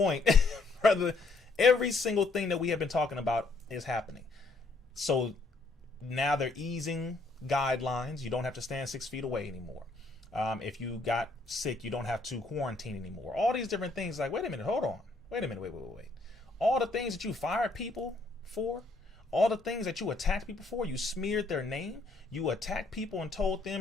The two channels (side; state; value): right; quieter; 3.4 dB